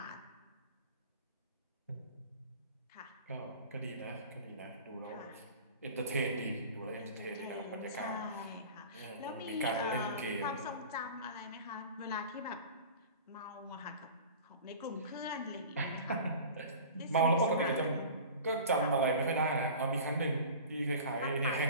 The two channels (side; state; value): both; inverted; correlation -0.38